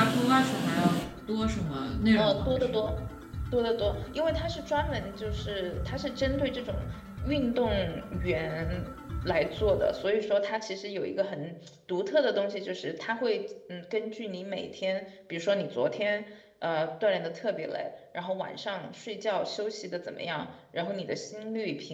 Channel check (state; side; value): identical; both; correlation 1.00